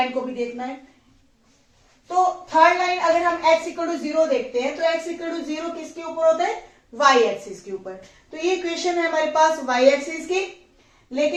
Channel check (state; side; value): identical; both; correlation 1.00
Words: को भी देखना है। तो थर्ड लाइन अगर हम x इक्वल टू 0 देखते हैं तो x इक्वल टू 0 किसके ऊपर होता है, y एक्सिस के ऊपर। तो ये इक्वेशन है हमारे पास y एक्सिस की,